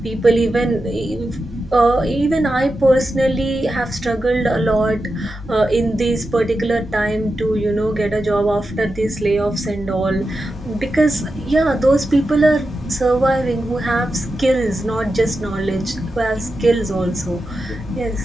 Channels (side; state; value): both; normal; correlation 0.90